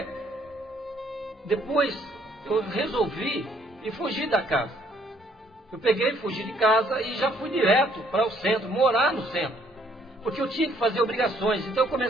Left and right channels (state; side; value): normal; both; correlation 0.65